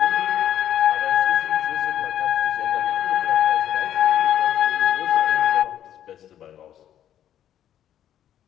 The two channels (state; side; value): quieter; right; 10.8 dB